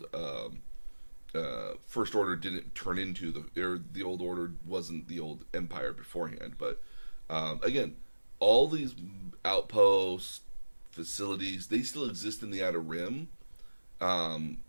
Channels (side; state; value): both; inverted; correlation -1.00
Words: First Order didn't turn into the old Order wasn't the old Empire beforehand. But again, all these outposts, facilities, they still exist in the Outer Rim,